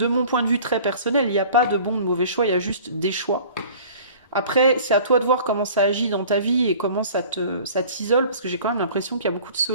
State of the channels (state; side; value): inverted; both; correlation -0.46